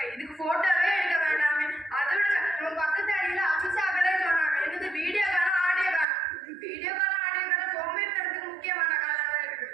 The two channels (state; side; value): drops out; left; at 6.1 s